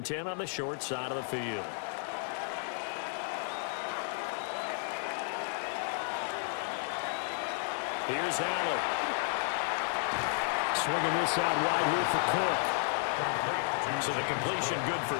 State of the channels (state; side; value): silent; right; 56 dB below the other